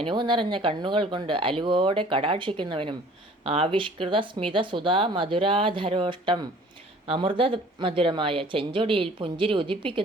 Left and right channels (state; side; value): normal; both; correlation 0.51